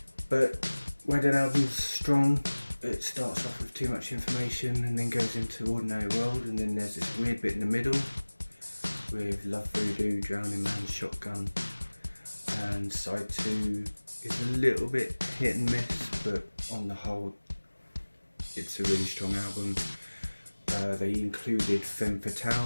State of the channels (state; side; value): inverted; both; correlation -1.00